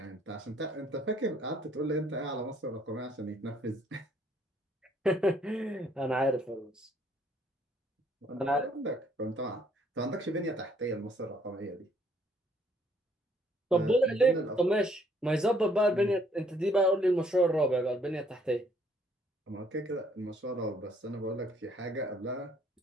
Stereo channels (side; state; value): both; normal; correlation 0.65